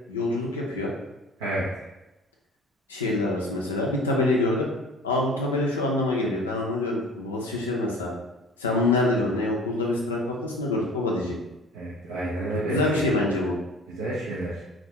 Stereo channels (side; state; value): both; normal; correlation 0.43